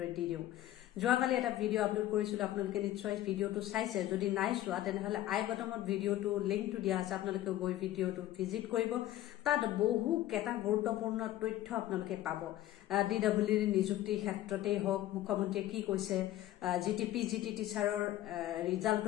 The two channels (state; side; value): quieter; right; 14.2 dB